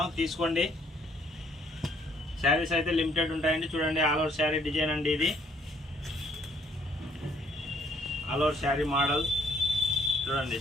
తీసుకోండి. శారీస్ అయితే లిమిటెడ్ ఉంటాయండి. చూడండి, ఆల్ ఓవర్ శారీ డిజైన్ అండి. ఇది ఆల్ ఓవర్ శారీ మోడల్. చూడండి,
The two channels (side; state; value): both; normal; correlation 0.65